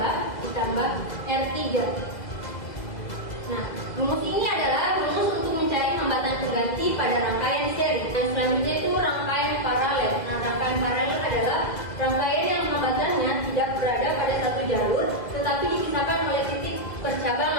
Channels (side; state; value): right; late; 2.0 ms